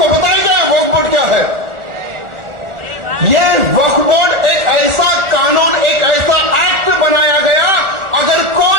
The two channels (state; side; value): late; left; 1.4 ms